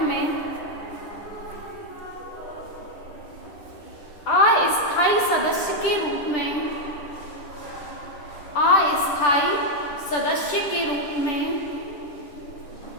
में अस्थायी सदस्य के रूप में, अस्थायी सदस्य के रूप में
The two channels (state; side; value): late; right; 10 ms